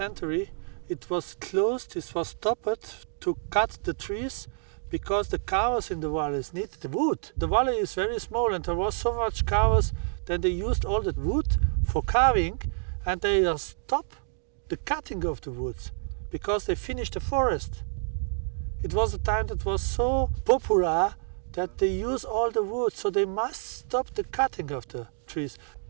it was closed, it was stopped to cut the trees because the carvers in the valleys needed the wood. The valley is very small and there was so much carvers that they used all the wood for carving and they stopped the cutting of the woods because they finished the forest. It was a time that was so popular that they use all the wood, so they must stop the cutting of the trees.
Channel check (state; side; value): silent; left; digital silence